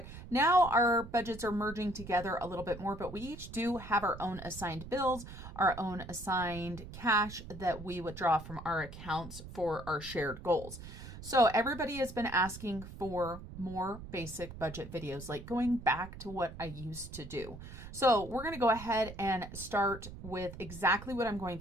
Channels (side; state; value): right; noise; rumble, 13 dB below the sound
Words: Now our budgets are merging together a little bit more, but we each do have our own assigned bills, our own assigned cash that we withdraw from our accounts for our shared goals. So everybody has been asking for more basic budget videos, like going back to what I used to do. So we're going to go ahead and start with exactly what I'm going